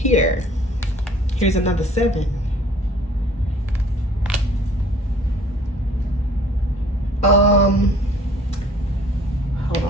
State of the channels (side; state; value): both; normal; correlation 0.55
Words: Here's another 7. Hold